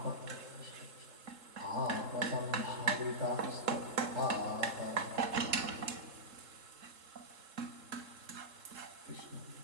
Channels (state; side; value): late; left; 3.7 ms